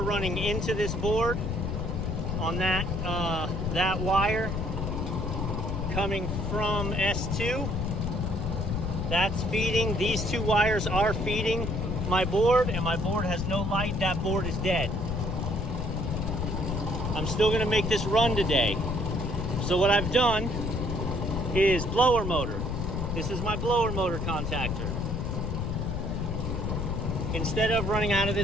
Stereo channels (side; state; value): left; noise; rumble, 2 dB below the sound